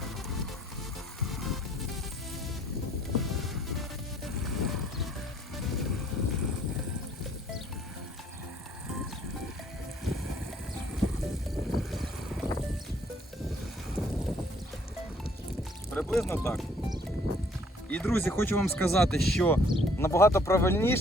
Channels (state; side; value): normal; both; correlation 0.61